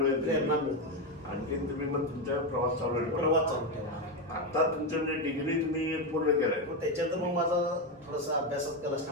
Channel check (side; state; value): both; normal; correlation 0.09